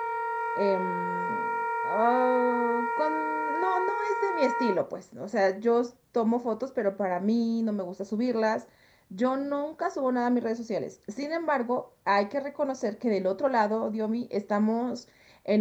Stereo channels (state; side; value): identical; both; correlation 1.00